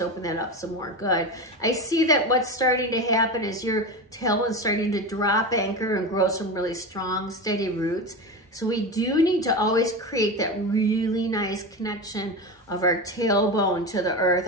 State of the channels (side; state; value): both; normal; correlation 0.22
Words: open that up some more. Good. I see that what's starting to happen is your tailbone's starting to drop anchor and grow some really strong, steady roots. So we do need to always create that really nice connection of our tailbone to the earth.